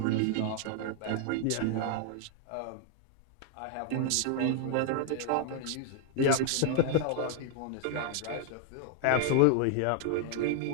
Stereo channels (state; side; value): different; both; correlation -0.01